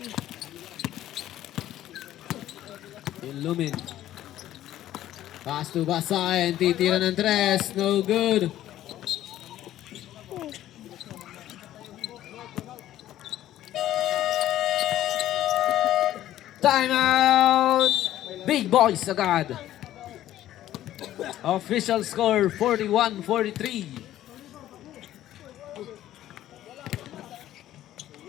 Ilumin. Pass to Basahin. Titira ng tres. No good. Timeout! Big boys agad. Official score 41-43.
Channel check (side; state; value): right; quieter; 13.1 dB